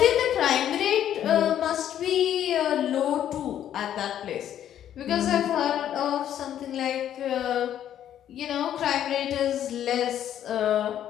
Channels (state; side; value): quieter; right; 10.6 dB